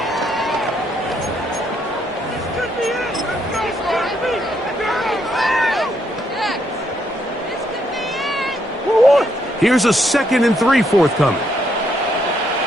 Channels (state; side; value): normal; both; correlation 0.74